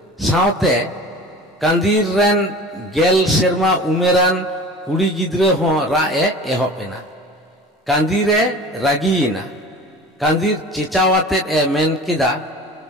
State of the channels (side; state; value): both; normal; correlation 0.39